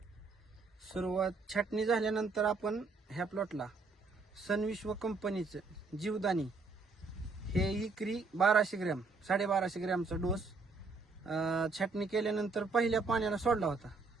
सुरुवात छाटणी झाल्यानंतर आपण ह्या प्लॉटला सनविश्व कंपनीचं जीवदानी हे एकरी 1200 ग्रॅम 1250 ग्रॅमचा डोस छाटणी केल्यानंतर पहिल्या पाण्याला सोडला होता।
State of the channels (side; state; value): left; quieter; 4.1 dB